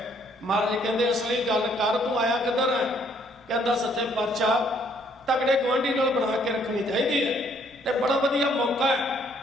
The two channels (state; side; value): normal; both; correlation 0.65